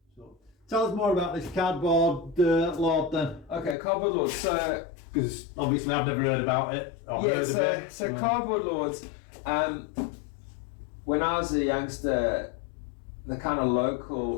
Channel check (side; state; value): right; drops out; at 3.8 s